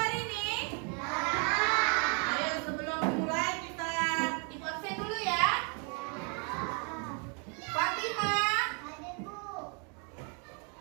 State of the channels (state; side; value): quieter; left; 37.2 dB